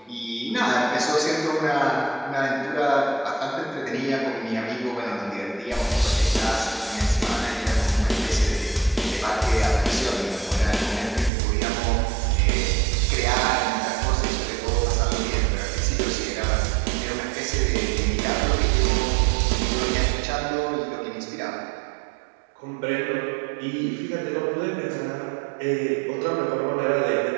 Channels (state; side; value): drops out; left; at 11.3 s